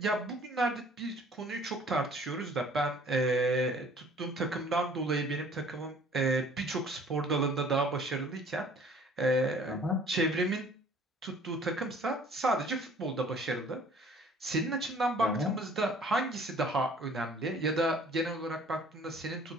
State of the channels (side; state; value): both; normal; correlation 0.53